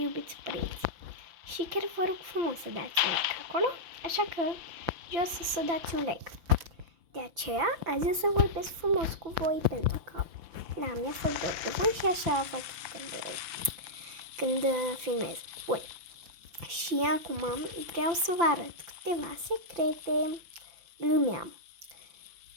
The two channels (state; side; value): late; left; 5.9 ms